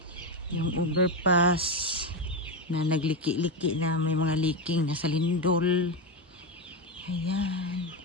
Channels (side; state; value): both; normal; correlation 0.12